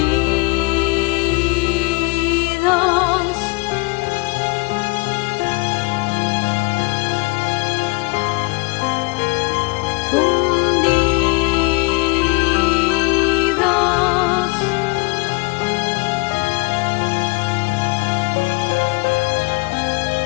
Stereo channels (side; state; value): right; quieter; 27.3 dB